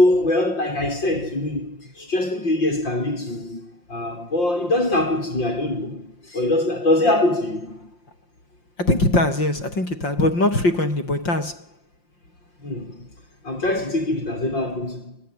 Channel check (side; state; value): right; late; 5.7 ms